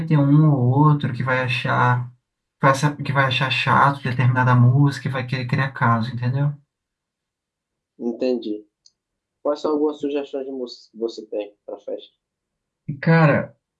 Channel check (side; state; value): both; identical; correlation 1.00